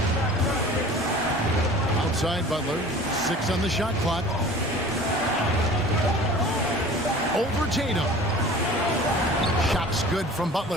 Outside Butler. 6 on the shot clock. Over Tatum. Shots good from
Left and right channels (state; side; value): normal; both; correlation 0.43